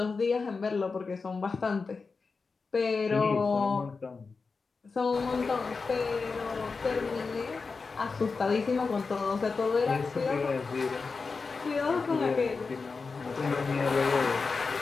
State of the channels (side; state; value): right; quieter; 4.5 dB